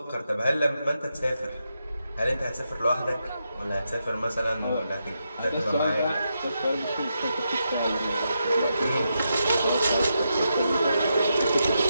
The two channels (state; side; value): inverted; both; correlation -0.84